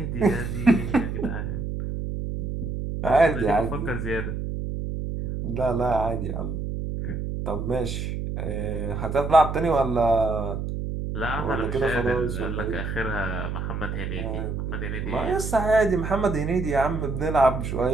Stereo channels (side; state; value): right; noise; hum, 4 dB below the sound